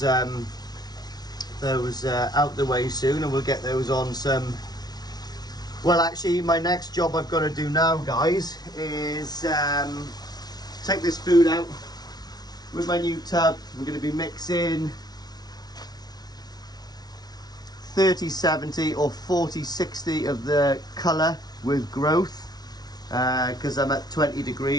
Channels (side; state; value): right; late; 0.19 ms